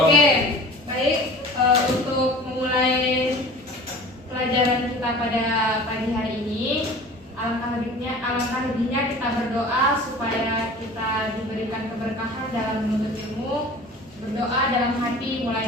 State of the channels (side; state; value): both; normal; correlation 0.41